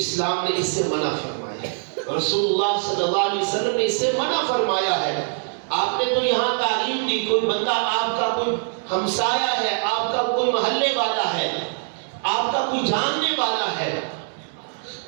اسلام نے اس سے منع فرمایا ہے، رسول اللہ صلی اللہ علیہ وسلم نے اس سے منع فرمایا ہے۔ آپ نے تو یہاں تعلیم دی، کوئی بندہ آپ کا کوئی ہمسایہ ہے، آپ کا کوئی محلے والا ہے، آپ کا کوئی جاننے والا ہے،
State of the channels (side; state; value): left; silent; digital silence